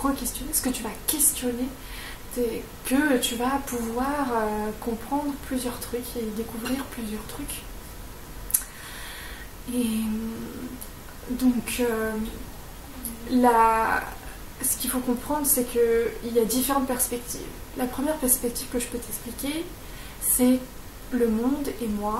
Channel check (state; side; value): identical; both; correlation 1.00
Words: ce que tu vas questionner, que tu vas pouvoir comprendre plusieurs trucs et découvrir plusieurs trucs. Et donc ce qu'il faut comprendre, c'est qu'il y a différentes perspectives. La première perspective que je peux t'expliquer, c'est le monde et